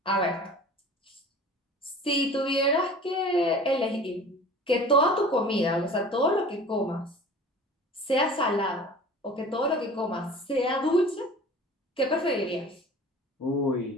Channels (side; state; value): both; normal; correlation 0.41